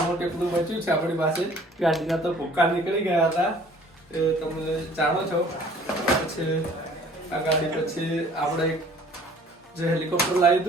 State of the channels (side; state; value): both; normal; correlation 0.53